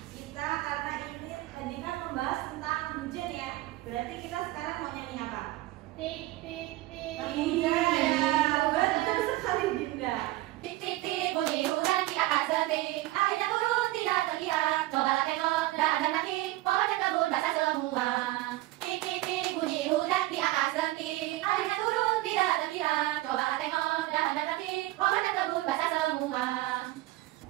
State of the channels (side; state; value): left; quieter; 17.7 dB